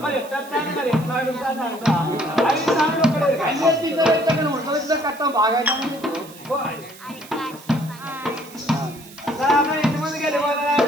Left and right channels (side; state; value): right; noise; hiss, 20 dB below the sound